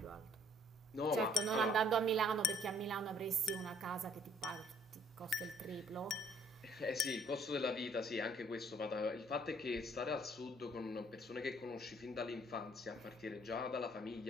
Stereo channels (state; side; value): normal; both; correlation 0.61